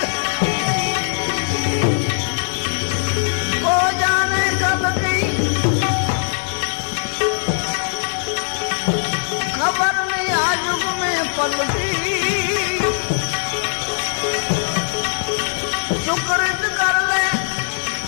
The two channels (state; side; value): silent; right; 66 dB below the other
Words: हो जाने कल की खबर नहीं आज युग में पलटी सुकृत कर ले